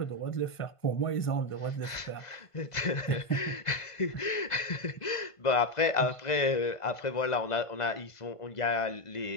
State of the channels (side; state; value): right; late; 1.5 ms